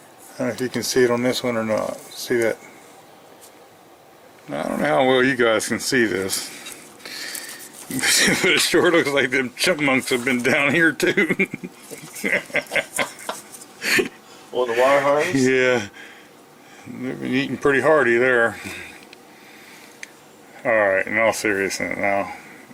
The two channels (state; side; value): identical; both; correlation 1.00